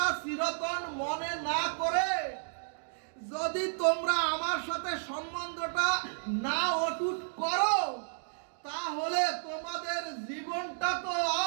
চিরতন মনে না করে, যদি তোমরা আমার সাথে সম্বন্ধটা না অটুট করো, তাহলে তোমাদের জীবনটা তো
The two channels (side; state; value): left; silent; digital silence